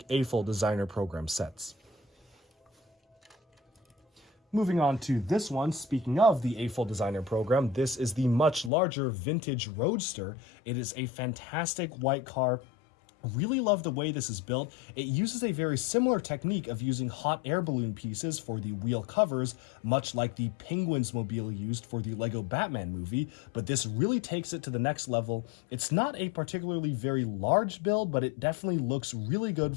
AFOL designer program sets. Moving on to this one, speaking of the A-Full Designer program, this is the much larger vintage Roadster. It is a fantastic white car. Really love the way this is built. It uses a very similar technique of using hot air balloon pieces for the wheel covers, much like the Penguins mobile used for the Lego Batman movie, but this really takes it to the next level. It's not a particularly very large build, but it definitely looks really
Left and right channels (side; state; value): right; drops out; at 8.7 s